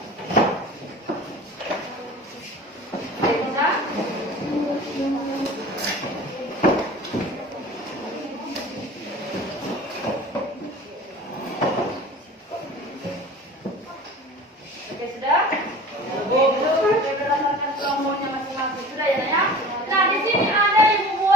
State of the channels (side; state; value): both; normal; correlation 0.40